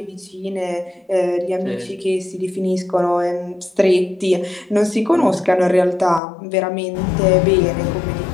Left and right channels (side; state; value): right; drops out; at 6.2 s